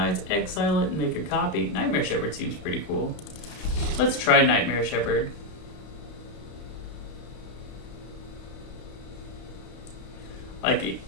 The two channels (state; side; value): late; right; 33 ms